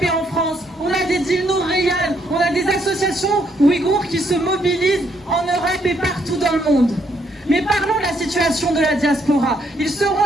en France, on a des Dilnour Reyhan, on a des associations ouïghours qui se mobilisent en Europe et partout dans le monde. Mais parlons de la situation de la diaspora. Ils seront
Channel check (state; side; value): normal; both; correlation 0.72